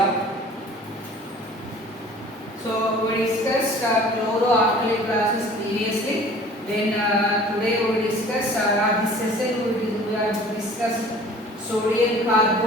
So we discussed chloroalkali classes previously. Then today we will discuss this session we have discussed sodium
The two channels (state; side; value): normal; both; correlation 0.47